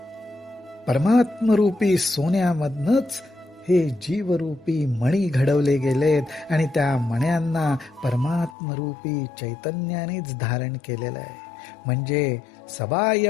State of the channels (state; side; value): drops out; right; at 8.6 s